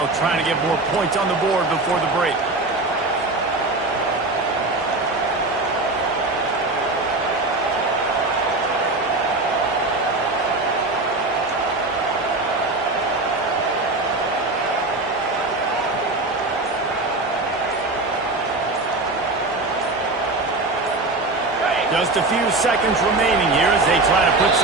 try to get more points on the board before the break. Just a few seconds remaining here as they try to put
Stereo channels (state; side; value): quieter; left; 3.1 dB